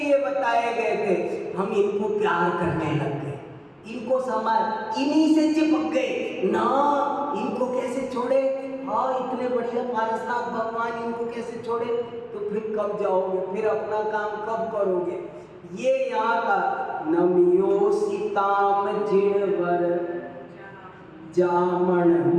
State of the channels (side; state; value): both; identical; correlation 1.00